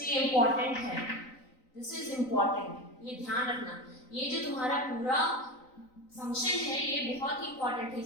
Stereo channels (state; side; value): late; right; 3.9 ms